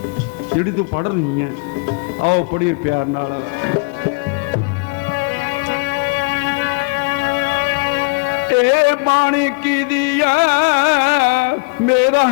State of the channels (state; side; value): quieter; right; 29.9 dB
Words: जिहड़ी तू पढ़ रही है? आओ पढ़िए प्यार नाल। ए बाणी किहदी है मेरा